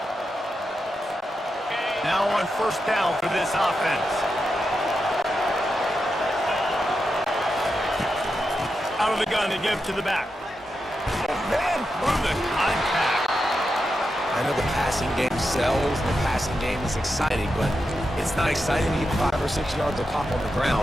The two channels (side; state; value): both; normal; correlation 0.88